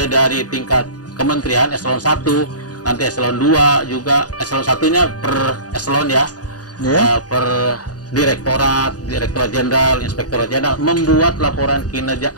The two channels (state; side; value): late; right; 0.68 ms